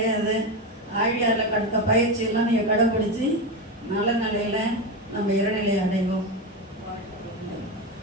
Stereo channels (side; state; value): both; normal; correlation 0.16